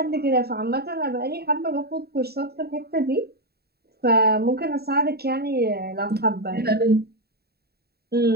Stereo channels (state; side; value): late; left; 0.46 ms